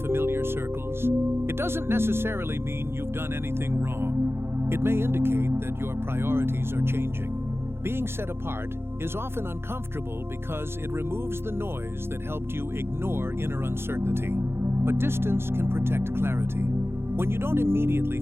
familiar circles, it doesn't necessarily mean you've done anything wrong. It may indicate that your priorities are changing. Being set apart is often uncomfortable because it removes the noise that helped you ignore inner uncertainty. But distance can protect clarity. When you don't immediately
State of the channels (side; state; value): left; late; 0.12 ms